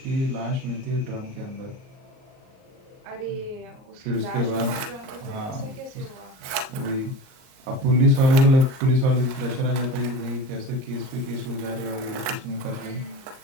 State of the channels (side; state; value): left; late; 38 ms